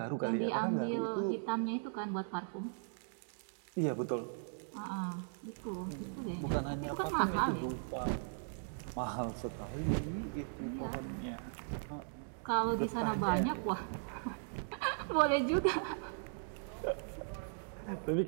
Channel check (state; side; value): silent; left; digital silence